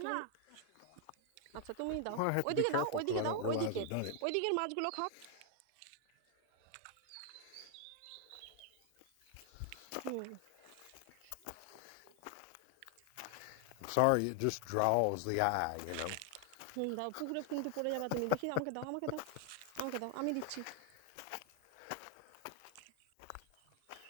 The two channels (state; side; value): different; both; correlation 0.00